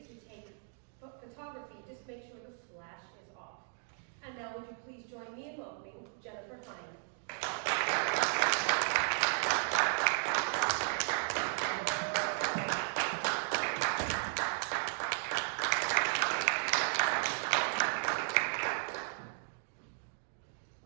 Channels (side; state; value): left; silent; 54 dB below the other